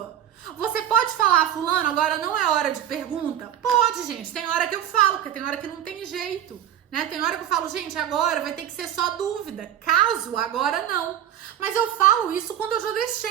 Você pode falar, fulano, agora não é hora de pergunta? Pode, gente. Tem hora que eu falo, porque tem hora que não tem jeito, né? Tem hora que eu falo, gente, agora vai ter que ser só dúvida. Caso, agora não. Mas eu falo isso quando eu já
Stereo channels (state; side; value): quieter; left; 10.7 dB